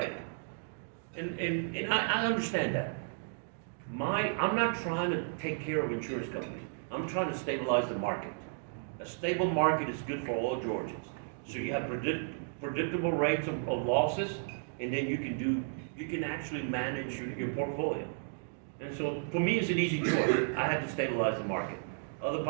And I understand that. I'm not trying to take care of insurance companies. I'm trying to stabilize the market. A stable market is good for all Georgians. So you have predictable rates of losses, and then you can actually manage your portfolio. And so for me, it's an easy choice. I have to stabilize the market. Other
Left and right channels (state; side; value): silent; left; digital silence